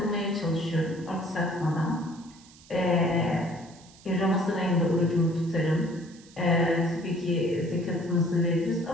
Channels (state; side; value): noise; right; hiss, 24 dB below the sound